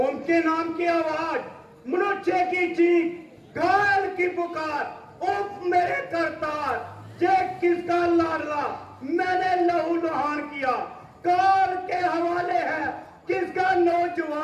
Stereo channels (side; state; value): both; identical; correlation 1.00